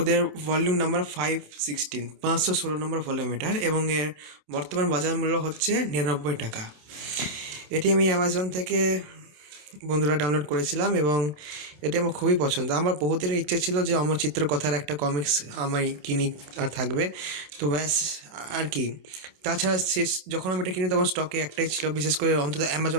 ভলিউম নাম্বার 516, 516 নম্বর ভলিউম এটার, এবং এর বর্তমান বাজার মূল্য হচ্ছে 99 টাকা। এটি আমি অ্যামাজন থেকে বন্ধুরা ডাউনলোড করেছিলাম এবং এটি আমার খুবই পছন্দ। আমার বহুদিনের ইচ্ছে ছিল যে অমর চিত্র কথার একটা কমিক্স আমি কিনি আর থাকবে, তো ব্যাস আর কি। তাছাড়া শেষ যখন আমি এটা কিনি তখন স্টকে একটাই ছিল, বিশেষ করে অন্তত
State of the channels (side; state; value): left; late; 28 ms